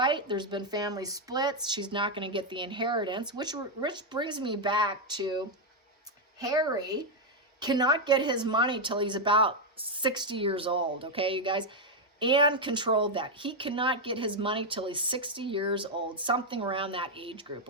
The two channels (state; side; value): normal; both; correlation 0.01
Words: There's been family splits. She's not going to get the inheritance, which brings me back to Harry cannot get his money till he's about 60 years old, okay, you guys? Anne controlled that. He cannot get his money till he's 60 years old, something around that age group,